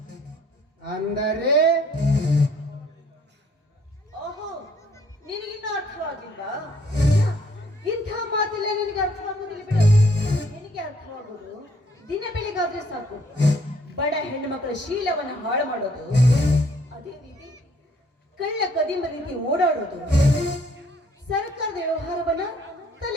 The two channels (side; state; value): both; normal; correlation 0.63